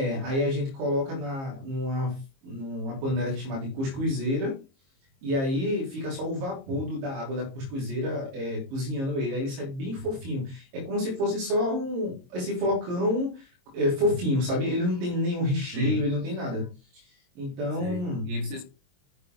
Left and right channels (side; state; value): left; late; 22 ms